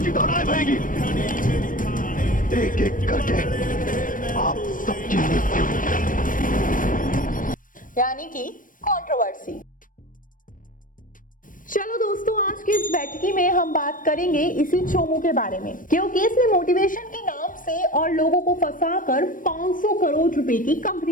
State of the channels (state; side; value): late; right; 0.39 ms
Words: दौड़ाई बहेगी, एक एक करके आप सबकी मृत्यु। यानी कि कंट्रोवर्सी। चलो दोस्तों, आज की इस बैठकी में हम बात करेंगे इसी चोमू के बारे में, क्योंकि इसने मोटिवेशन के नाम से और लोगों को फंसाकर 500 करोड़ रुपए की